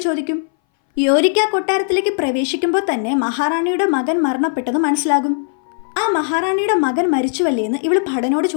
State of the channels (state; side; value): silent; right; 61 dB below the other